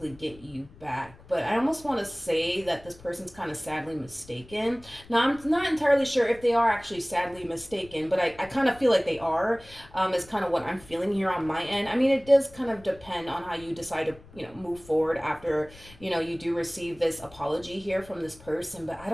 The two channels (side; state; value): left; noise; rumble, 22 dB below the sound